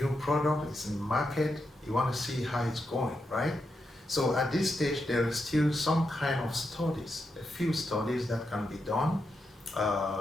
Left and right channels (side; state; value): both; normal; correlation 0.85